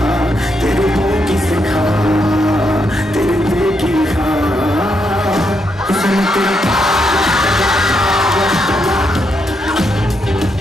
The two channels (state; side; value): normal; both; correlation 0.80